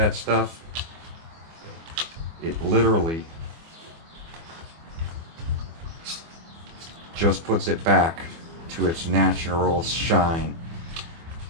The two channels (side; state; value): left; late; 24 ms